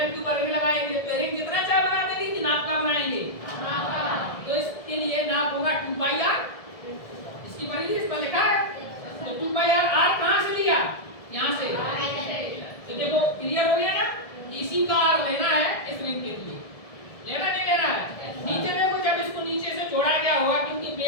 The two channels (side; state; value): right; late; 1.7 ms